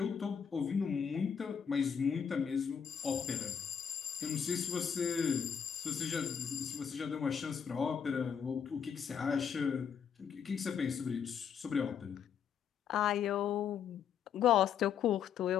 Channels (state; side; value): quieter; right; 7.5 dB